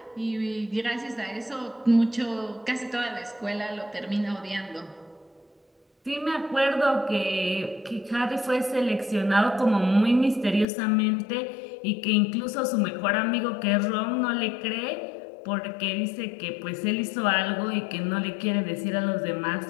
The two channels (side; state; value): right; drops out; at 10.7 s